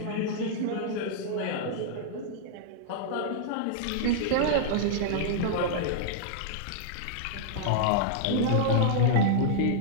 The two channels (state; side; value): different; both; correlation -0.01